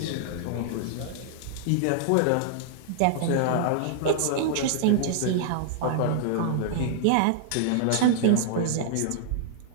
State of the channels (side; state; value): both; different; correlation -0.01